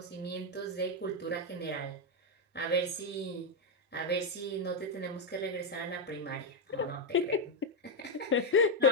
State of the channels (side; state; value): both; normal; correlation 0.03